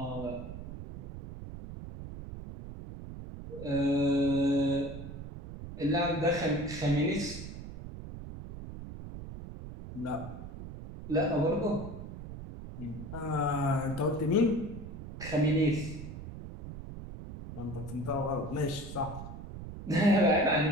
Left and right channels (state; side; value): noise; right; rumble, 10 dB below the sound